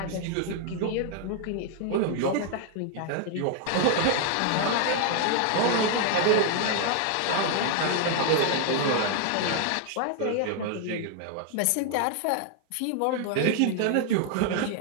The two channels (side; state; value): both; different; correlation 0.00